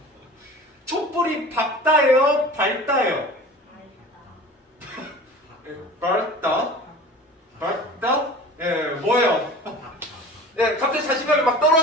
촛불이 밝다예요? 밝다예요? 밝다? 밝다? 예, 뭐예요? 예, 갑자기 자신감이 막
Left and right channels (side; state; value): both; normal; correlation 0.39